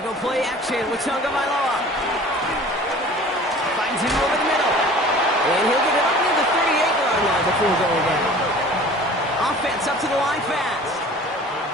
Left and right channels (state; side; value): normal; both; correlation 0.45